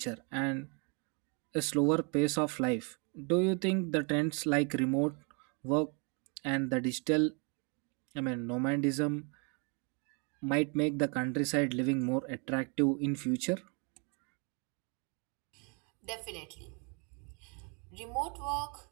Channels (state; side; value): quieter; left; 35.3 dB